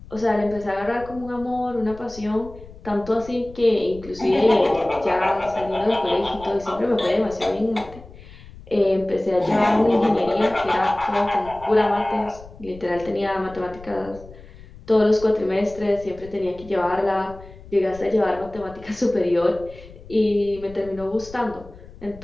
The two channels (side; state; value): left; noise; rumble, 19 dB below the sound